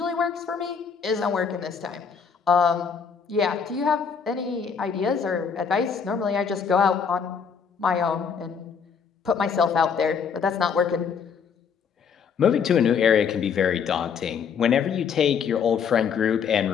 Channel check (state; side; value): quieter; right; 6.6 dB